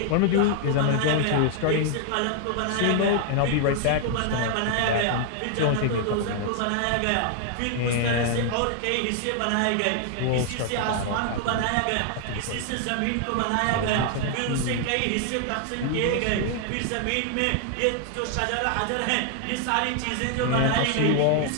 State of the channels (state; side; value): different; both; correlation 0.00